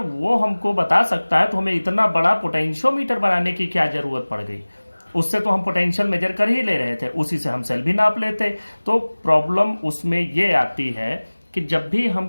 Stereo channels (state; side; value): inverted; both; correlation -1.00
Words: हमको बता सकता है तो हमें इतना बड़ा पोटेंशियोमीटर बनाने की क्या जरूरत पड़ गई। उससे तो हम पोटेंशियल मेजर कर ही ले रहे थे, उसी से हम सेल भी नाप लेते। तो प्रॉब्लम उसमें ये आती है कि जब भी हम